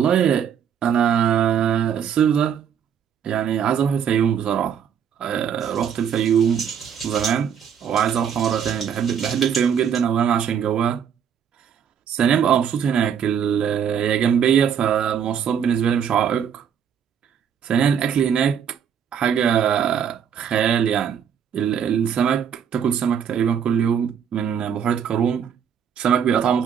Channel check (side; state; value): left; quieter; 8.1 dB